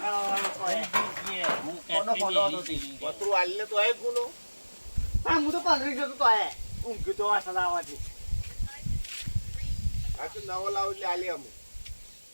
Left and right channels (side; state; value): both; inverted; correlation -1.00